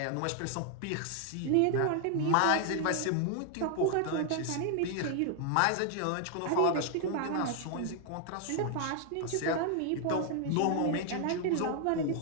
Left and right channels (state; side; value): different; both; correlation 0.00